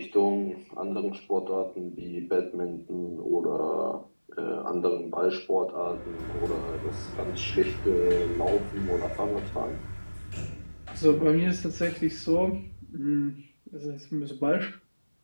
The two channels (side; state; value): both; inverted; correlation -1.00